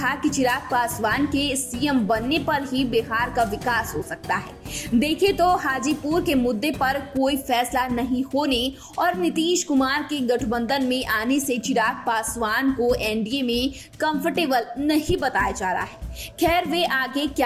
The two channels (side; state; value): both; identical; correlation 1.00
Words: कि चिराग पासवान के सीएम बनने पर ही बिहार का विकास हो सकता है। देखें तो हाजीपुर के मुद्दे पर कोई फैसला नहीं होने और नीतीश कुमार के गठबंधन में आने से चिराग पासवान को एनडीए में कंफर्टेबल नहीं बताया जा रहा है। खैर, वे आगे